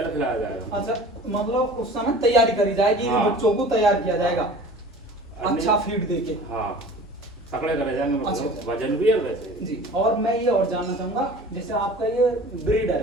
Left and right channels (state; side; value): normal; both; correlation 0.42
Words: खिलाया जाएगा। अच्छा, मतलब उस समय तैयारी करी जाएगी। हाँ। बच्चों को तैयार किया जाएगा अन्य- अच्छा फीड देके। हाँ, तकड़े करे जाएंगे, मतलब अच्छा। वजन भी है वैसे। जी। और मैं ये और जानना चाहूंगा, जैसे आपका ये ब्रीडर